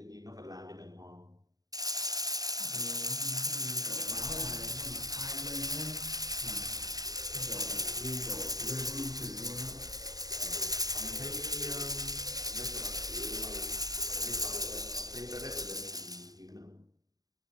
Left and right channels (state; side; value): late; left; 0.18 ms